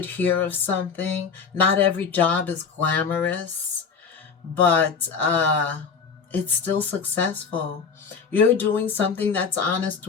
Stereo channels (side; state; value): right; quieter; 5.8 dB